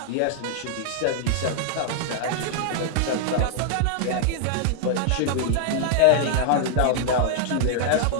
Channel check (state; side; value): different; both; correlation 0.00